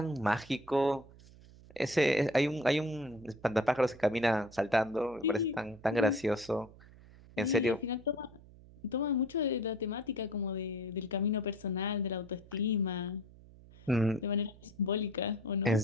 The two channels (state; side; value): noise; right; hum, 22 dB below the sound